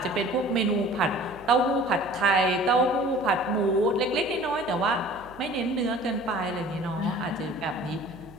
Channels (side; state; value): right; noise; hum, 22 dB below the sound